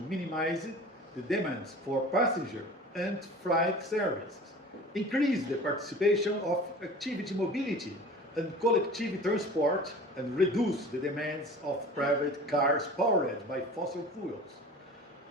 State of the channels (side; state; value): both; normal; correlation 0.41